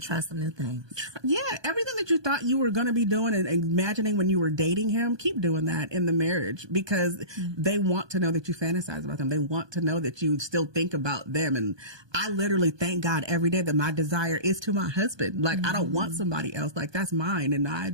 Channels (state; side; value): late; left; 1.2 ms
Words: try some new things. Yeah, everything that you thought you were going to be doing and imagining when you were dating him, keep doing that in the marriage, because they want to know that you fantasize about them. They want to know that you still think about them. And I literally thank God every day that my desire is to my husband. Like, I don't want somebody else. Like, that's mine, and I